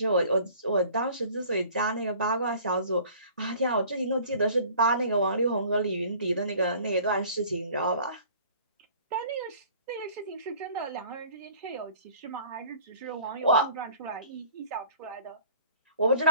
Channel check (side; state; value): both; inverted; correlation -0.50